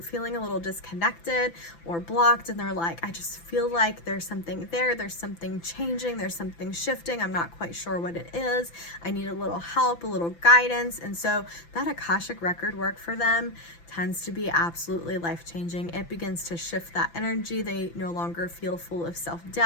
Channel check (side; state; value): right; late; 5.9 ms